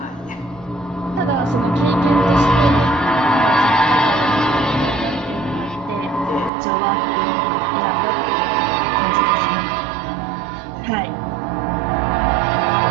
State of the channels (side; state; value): left; drops out; at 6.5 s